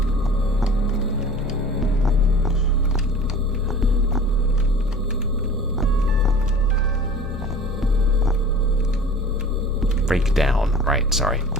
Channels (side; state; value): both; normal; correlation 0.42